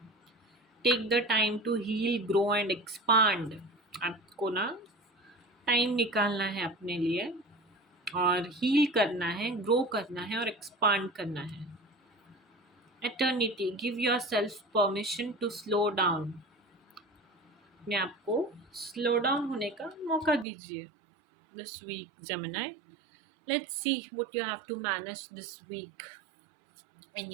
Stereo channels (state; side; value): drops out; left; at 20.5 s